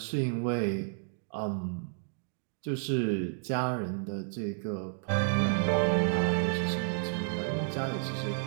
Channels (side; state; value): left; silent; 57 dB below the other